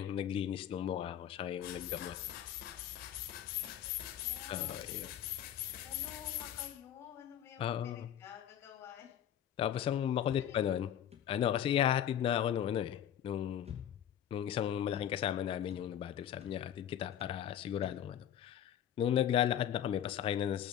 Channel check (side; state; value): right; quieter; 10.2 dB